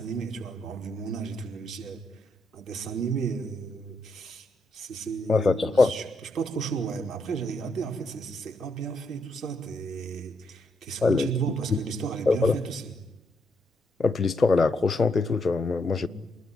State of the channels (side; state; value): both; normal; correlation 0.78